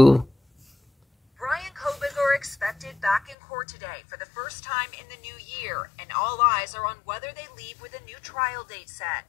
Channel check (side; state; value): right; drops out; at 3.4 s